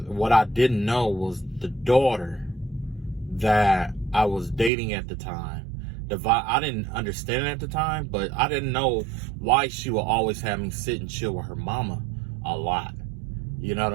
what I didn't know was the daughter that I was dating at the time. I didn't understand it at the time, but I didn't know why she would always have me sit and chill with her mama a lot. You know what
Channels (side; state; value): left; drops out; at 4.7 s